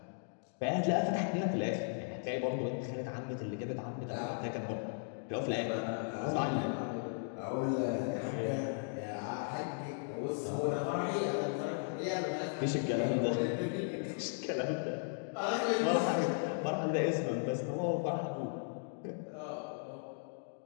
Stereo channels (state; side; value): silent; right; digital silence